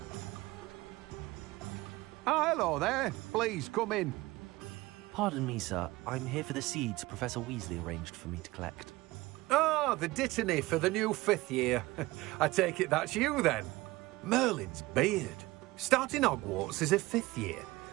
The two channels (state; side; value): quieter; left; 20.2 dB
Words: Ah, hello there. Please, come in. Pardon me, sir. I'm here for the seeds Professor Weasley arranged for me to collect. Ah, the dittany for the new 5th year. I take it that's you, then. Merlin's beard. Starting Hogwarts as a 5th year.